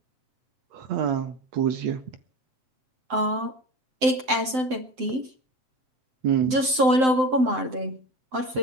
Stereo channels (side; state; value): left; late; 7.8 ms